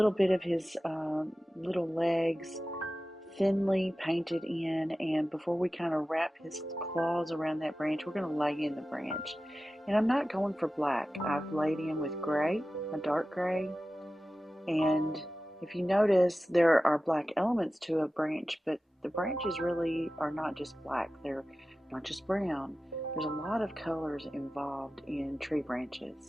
bit of his little legs thinly painted in, and before we kind of wrap his claws around that branch, we're going to lay in the branch. And I'm not going for black. I've laid in with gray, a dark gray, and if you notice, there are black elements to a branch, but the branches really are not just black. They're not just brown. There's a lot of colors involved in tree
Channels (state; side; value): normal; both; correlation 0.95